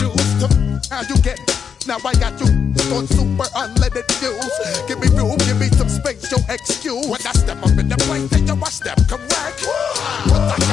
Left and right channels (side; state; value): right; quieter; 7.1 dB